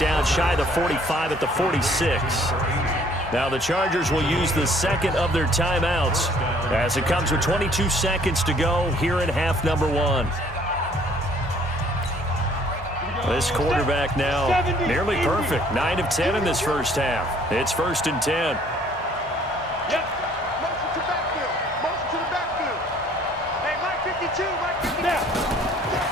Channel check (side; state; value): both; normal; correlation 0.59